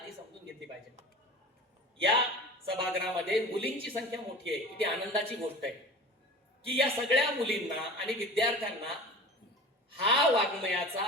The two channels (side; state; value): both; normal; correlation 0.37